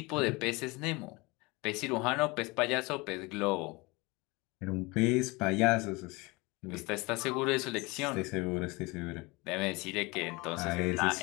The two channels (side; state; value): right; quieter; 25.0 dB